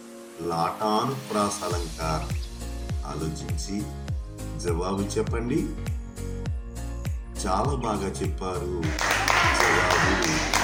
లాటానుప్రాస అలంకారం. ఆలోచించి జవాబు చెప్పండి. చాలా బాగా చెప్పారు. జవాబు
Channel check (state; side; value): identical; both; correlation 1.00